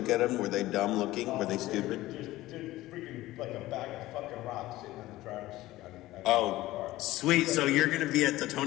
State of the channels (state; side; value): quieter; right; 17.0 dB